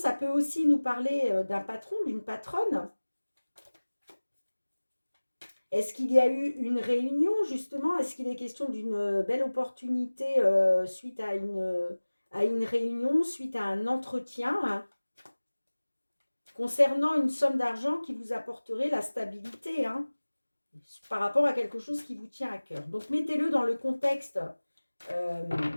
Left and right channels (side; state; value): both; inverted; correlation -1.00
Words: peut aussi nous parler d'un patron, d'une patronne. Est-ce qu'il y a eu une réunion justement? Est-ce qu'il est question d'une belle opportunité suite à une réunion, suite à un entretien hein, concernant une somme d'argent qui vous apporterait la stabilité hein, par rapport à quelque chose qui vous tient à cœur? Donc mettez-le dans le contexte euh,